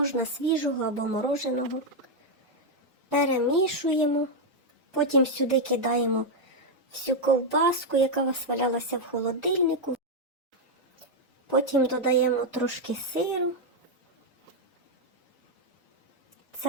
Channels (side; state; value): both; normal; correlation 0.00